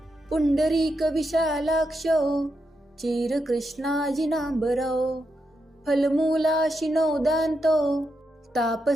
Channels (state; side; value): normal; both; correlation 0.84